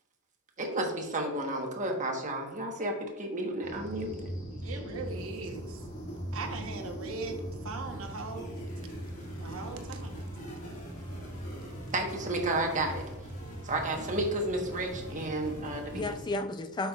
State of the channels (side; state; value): both; normal; correlation 0.18